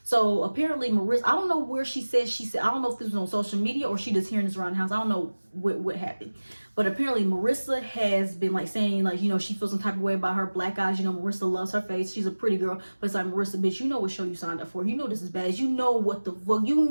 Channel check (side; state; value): both; inverted; correlation -1.00